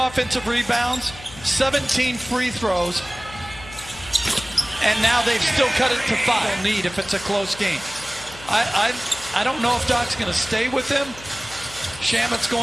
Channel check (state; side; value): noise; left; hum, 17 dB below the sound